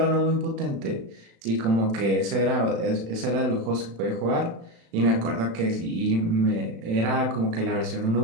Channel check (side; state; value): left; late; 36 ms